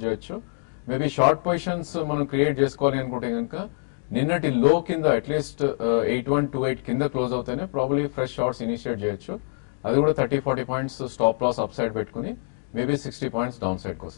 చేయొచ్చు. మేబీ షార్ట్ పొజిషన్స్ మనం క్రియేట్ చేసుకోవాలి అనుకుంటే కనుక నిన్నటి లో కింద అట్లీస్ట్ 8128 కింద క్లోజ్ అవుతేనే ప్రాబ్లీ ఫ్రెష్ షార్ట్స్ ఇనిషియేట్ చేయొచ్చు. అది కూడా 30-40 points stop loss upside పెట్టుకుని మేబీ 60 పాయింట్స్ డౌన్ సైడ్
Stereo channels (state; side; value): silent; right; digital silence